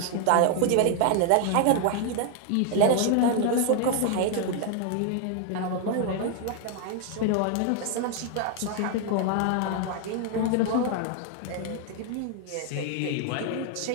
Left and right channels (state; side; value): different; both; correlation 0.00